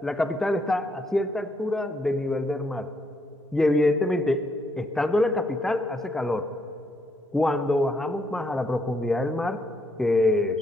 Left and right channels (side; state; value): both; normal; correlation 0.74